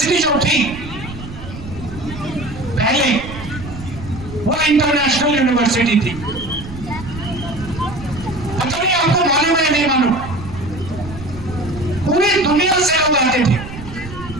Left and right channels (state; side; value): noise; right; rumble, 12 dB below the sound